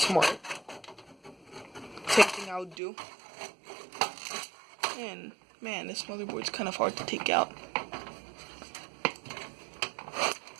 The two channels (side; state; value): left; drops out; at 2.8 s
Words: Same thing I would do. And man, this motherboard's kind of hard to take out.